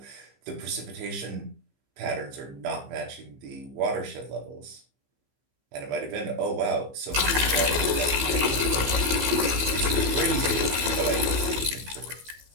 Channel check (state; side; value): late; left; 15 ms